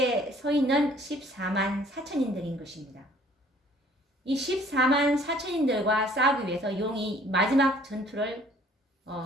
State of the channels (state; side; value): normal; both; correlation 0.57